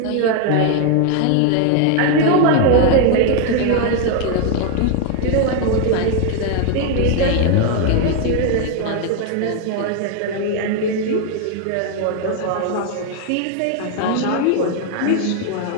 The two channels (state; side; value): different; both; correlation 0.01